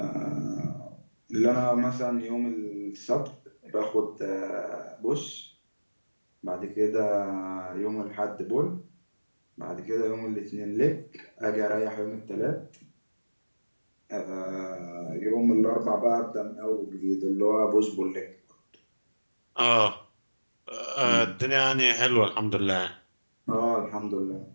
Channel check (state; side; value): inverted; both; correlation -1.00